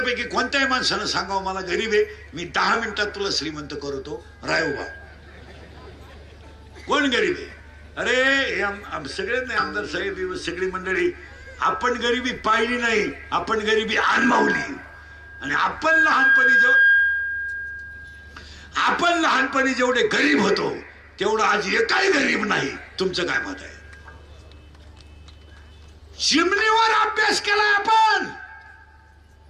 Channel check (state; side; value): identical; both; correlation 1.00